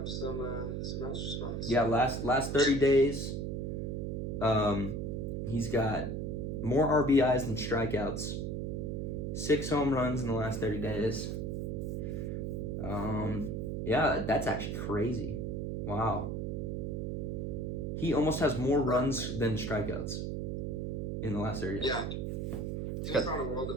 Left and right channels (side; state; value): right; noise; hum, 2 dB below the sound